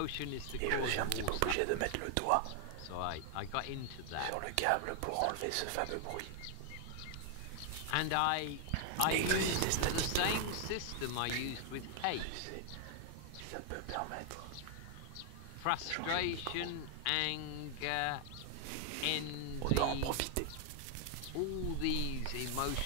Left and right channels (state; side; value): different; both; correlation 0.00